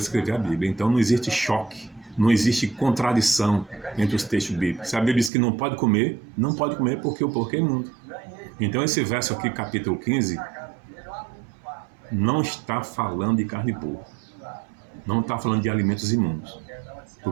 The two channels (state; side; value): drops out; left; at 5.3 s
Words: a escrever a Bíblia. Então não existe choque, não existe contradição entre os textos bíblicos. Se a Bíblia diz que não pode comer, não pode comer porque o porco é imundo. Então esse verso aqui, capítulo 15, não está falando de carne de porco. Não está falando de alimentos imundos.